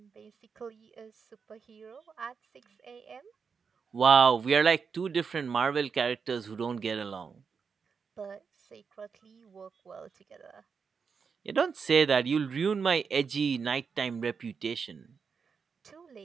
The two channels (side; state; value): left; quieter; 5.8 dB